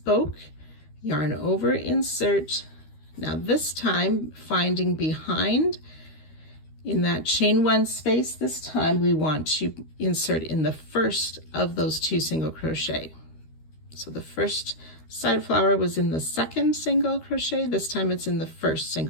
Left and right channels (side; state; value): right; late; 13 ms